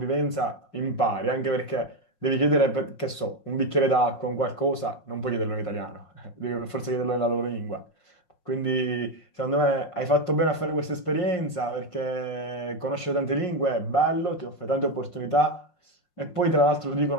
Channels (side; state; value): right; late; 5.5 ms